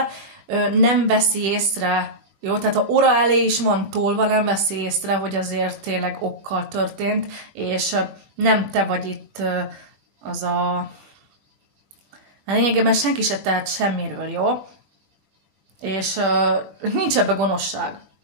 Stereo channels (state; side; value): late; left; 20 ms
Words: nem veszi észre. Jó, tehát ha óra elé is van tolva, nem veszi észre, hogy azért tényleg okkal történt, és nem te vagy itt az a... Lényegében senki se tehet semmiről, jó? És nincs ebbe gonoszság.